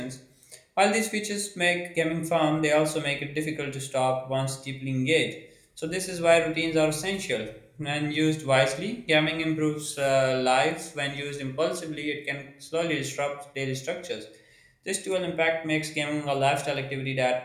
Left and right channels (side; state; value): both; identical; correlation 1.00